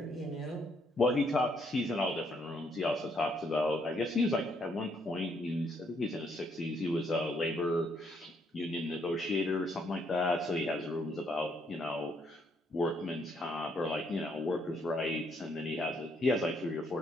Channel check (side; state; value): both; normal; correlation 0.71